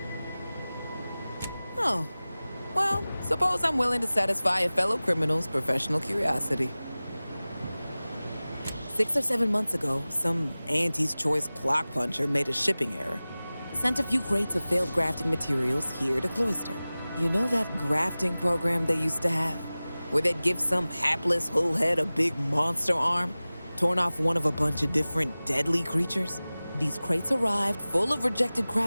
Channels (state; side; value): inverted; both; correlation -0.98